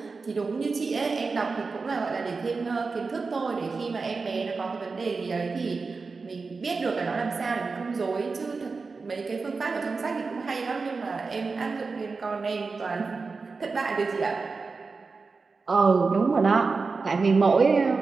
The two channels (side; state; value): left; quieter; 4.4 dB